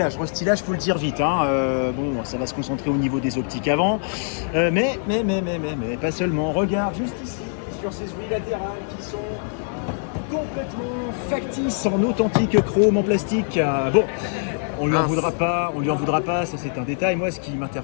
Restylage, faut le dire vite. Hein. Bon, ça va se concentrer au niveau des optiques avant. Mais, pas seulement. Regarde juste ici, sur ces ouïes latérales qui sont complètement factices en authentique chrome en plastique. Bon. On lui en voudra pas, ça c'est un détail. Moi, ce qui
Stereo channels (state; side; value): silent; right; 63 dB below the other